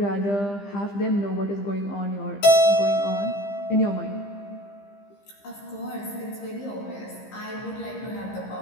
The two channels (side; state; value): right; late; 15 ms